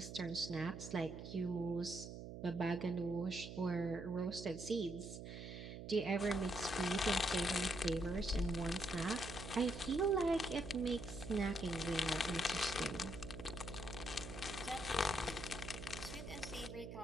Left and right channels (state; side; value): noise; right; hum, 9 dB below the sound